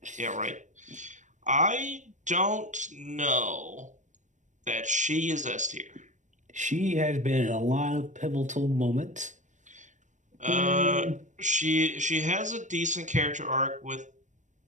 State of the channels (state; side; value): late; left; 0.35 ms